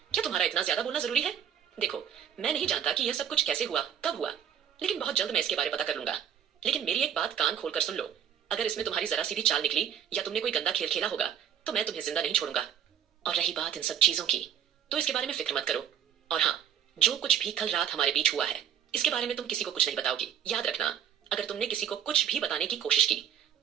क्या तुम्हारा इतना ज्यादा बोलना जरूरी है? देखो, मैं नहीं जानता कि यह सब कुछ कैसे हुआ, कब हुआ, लेकिन बहुत जल्द मैं इसके बारे में पता कर लूंगा। लेकिन मेरी एक बात कान खोलकर सुन लो, अगर इसमें तुम्हारी जरा सी भी चाल निकली या तुमने कोई गंदा खेल खेला होगा तो मैं तुम्हें जिंदा नहीं छोड़ूंगा। और रही बात इन सब चीजों की, तो इसके बारे में फिक्र मत करो। और हाँ, जो कुछ भी कल रात हमारे बीच हुआ है, इसके बारे में तुम किसी को कुछ नहीं बताओगी। याद रखना, अगर तुमने किसी को कुछ भी बताने की कोशिश की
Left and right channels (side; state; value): left; quieter; 9.1 dB